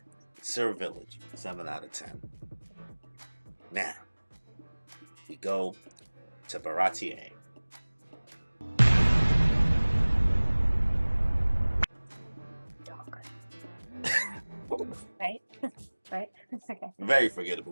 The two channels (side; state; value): both; inverted; correlation -1.00